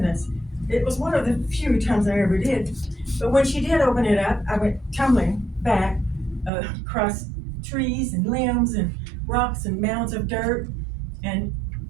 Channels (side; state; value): left; drops out; at 6.5 s